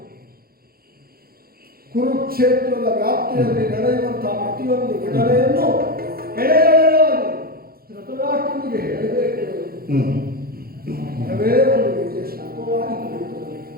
ಕುರುಕ್ಷೇತ್ರದ ವ್ಯಾಪ್ತಿಯಲ್ಲಿ ನಡೆಯುವಂತಹ ಪ್ರತಿಯೊಂದು ಘಟನೆಯನ್ನು ಎಳೆಯಾಗಿ ಧೃತರಾಷ್ಟ್ರನಿಗೆ ಹೇಳಬೇಕು. ಮರವೇ ಒಂದು ರೀತಿಯ ಶಾಪವಾಗಿ ಕುಳಿತುಕೊಳ್ಳಿ.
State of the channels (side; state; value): left; late; 0.44 ms